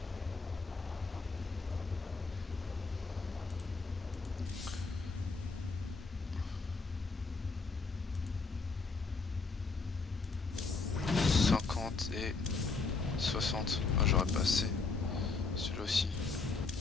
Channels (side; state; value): right; quieter; 4.2 dB